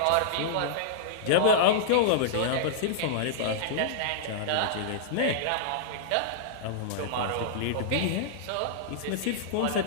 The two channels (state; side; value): different; both; correlation -0.02